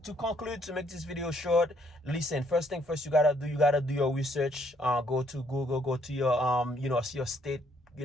video short, listen. First thing first, you gotta do your research. Go to Google, go to your see your state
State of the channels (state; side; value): normal; both; correlation 0.68